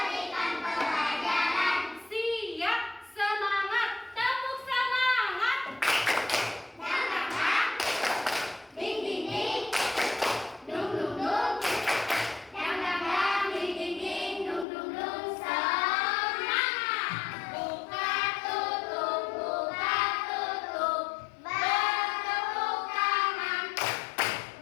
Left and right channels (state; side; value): drops out; right; at 14.7 s